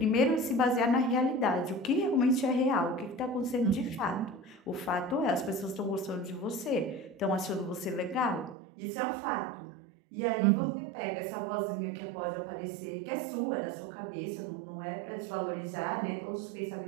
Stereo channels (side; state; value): left; drops out; at 8.6 s